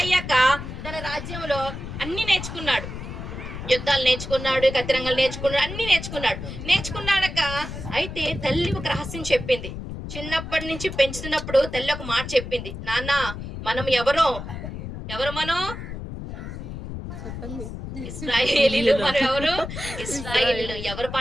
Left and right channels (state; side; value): noise; left; rumble, 8 dB below the sound